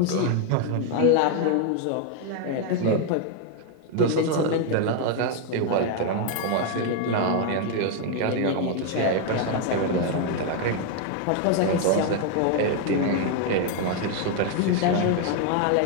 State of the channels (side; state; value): both; different; correlation 0.01